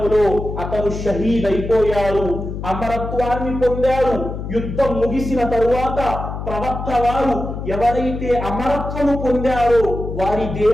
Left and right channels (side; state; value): left; noise; hum, 7 dB below the sound